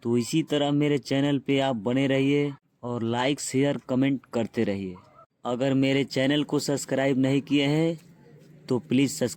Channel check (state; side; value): identical; both; correlation 1.00